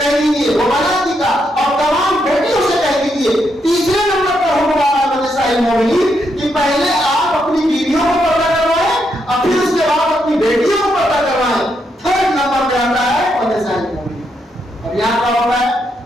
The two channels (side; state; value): both; normal; correlation 0.79